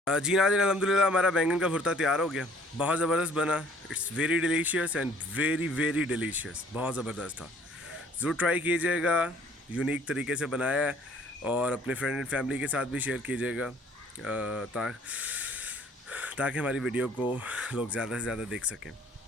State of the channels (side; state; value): both; normal; correlation 0.58